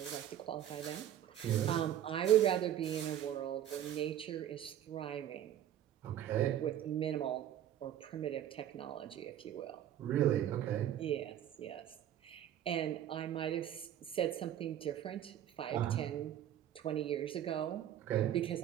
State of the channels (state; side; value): quieter; left; 11.0 dB